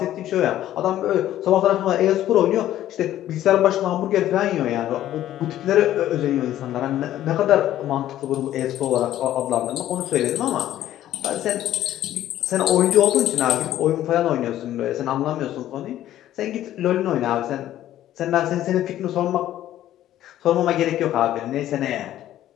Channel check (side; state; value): right; quieter; 12.9 dB